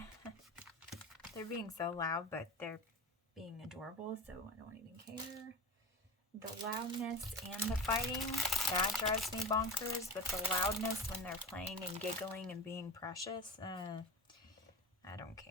They're being so loud, but they're being adorable, so I don't even care. The loudness and the fighting, that drives me bonkers, but the loudness when they're playing and giggling and being precious, I don't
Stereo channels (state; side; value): normal; both; correlation 0.30